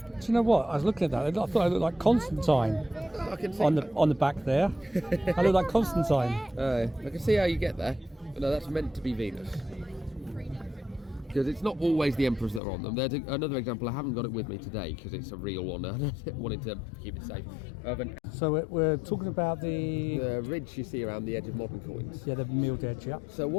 Do you know what? I was looking at that. I thought I looked like Constantine I can see, on the back there. I look like Constantine. I can see how you get there. But no, that's meant to be Venus. Because it's not always the emperors that are on them. There's another example, I haven't got it with me today because it's a real one. I wanted to keep it safe. Of an So we're talking about the ridge you see around the edge of modern coins. the milled edge, yeah. So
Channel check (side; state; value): right; drops out; at 12.6 s